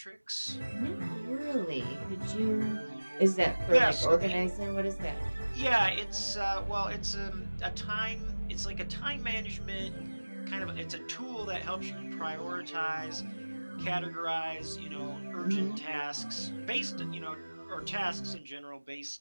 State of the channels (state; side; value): inverted; both; correlation -1.00